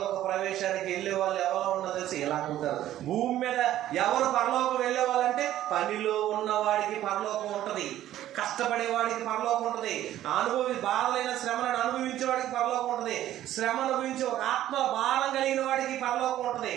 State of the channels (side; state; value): left; quieter; 13.0 dB